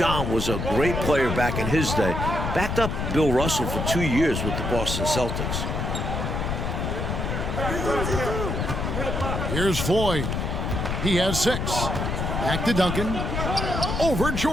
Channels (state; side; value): noise; left; rumble, 2 dB below the sound